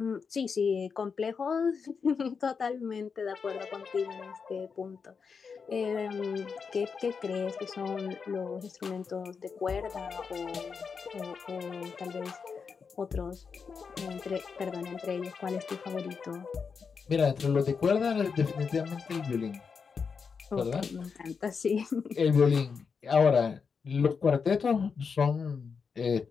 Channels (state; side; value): quieter; right; 5.7 dB